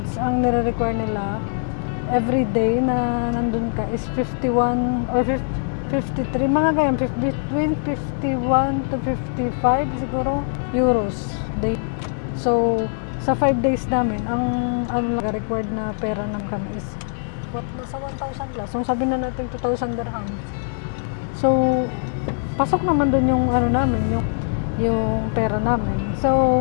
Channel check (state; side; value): silent; right; digital silence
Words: ang nire-require nila every day na nandun ka is 51 or 53, mga ganyan, between 51 to 55 siguro euros day. So sa 5 days namin, ang required na pera namin kami is nasa 1,000 plus. So sabi na natin 2,000 dirhams. So pasok naman doon yung namin, yung pera namin.